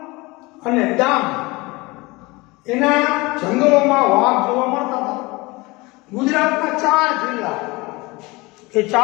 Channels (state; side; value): quieter; right; 23.4 dB